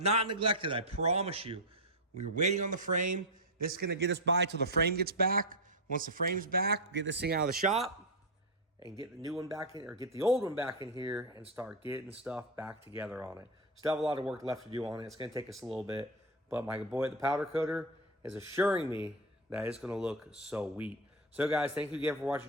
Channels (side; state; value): both; normal; correlation 0.07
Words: neglected, I promise you. We were waiting on the frame. This is gonna get us by till the frame gets back. Once the frame's back, we'll get this thing out of the shop and get the new one back in, or get the old one back in here and start getting stuff back together on it. Still have a lot of work left to do on it. It's gonna take us a little bit, but my boy at the powder coater is assuring me that it's gonna look so sweet. So guys, thank you again for